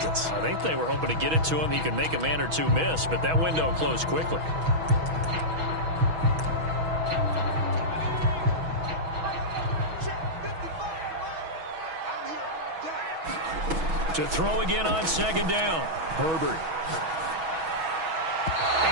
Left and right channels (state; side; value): late; left; 6.2 ms